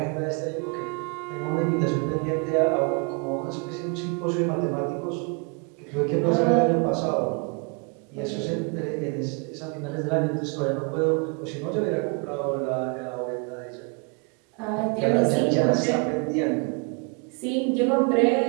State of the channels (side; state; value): left; quieter; 34.7 dB